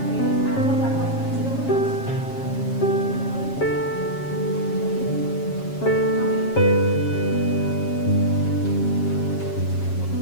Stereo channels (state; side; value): late; right; 7.3 ms